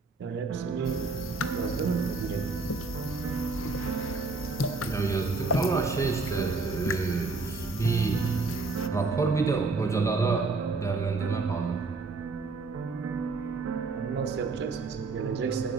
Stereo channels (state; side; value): quieter; left; 3.8 dB